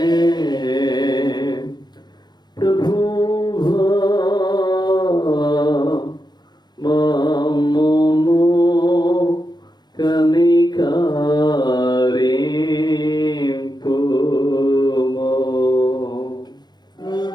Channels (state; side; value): late; right; 0.21 ms